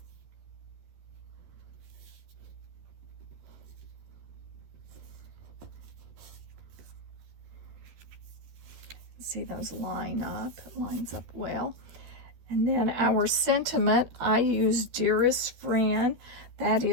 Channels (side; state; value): left; late; 13 ms